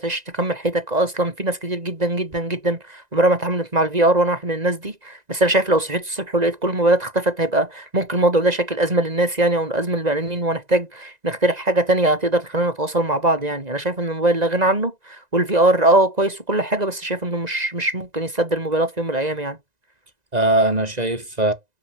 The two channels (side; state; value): left; late; 1.9 ms